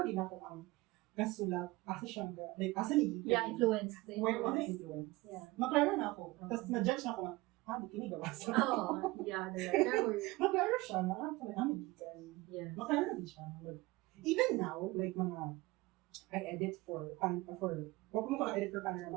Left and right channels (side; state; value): left; quieter; 21.1 dB